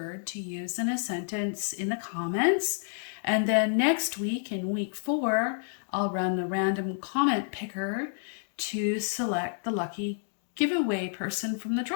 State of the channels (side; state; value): right; silent; digital silence